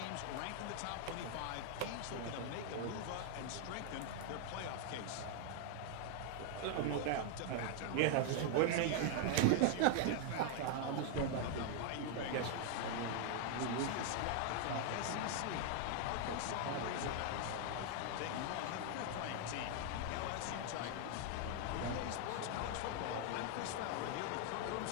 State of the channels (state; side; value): different; both; correlation 0.00